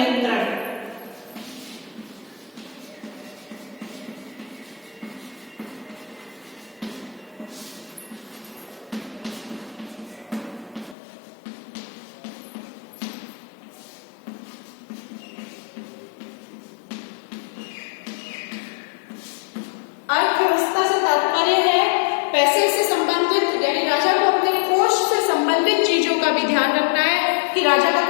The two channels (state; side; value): drops out; right; at 11.0 s